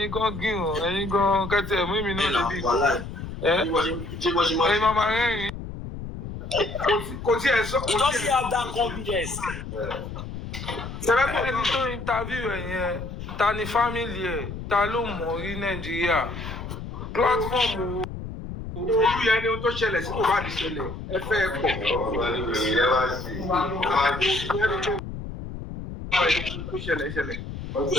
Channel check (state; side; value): noise; left; rumble, 8 dB below the sound